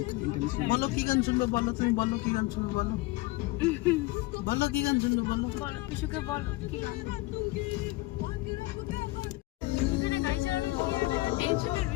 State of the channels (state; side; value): quieter; right; 20.8 dB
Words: ইন্টারন্যাশনাল। বলো কি গান শুনবে বলো, তুমি বলো কি গান শুনবে বলো। বলো কি গান শুনবে বলো। বলো পিসুকে বলো কি গান। এখানে গাড়ি চালানো কি একটা টেনশনের